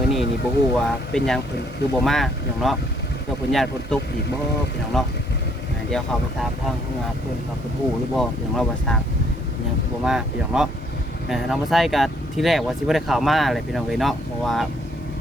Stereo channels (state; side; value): normal; both; correlation 0.67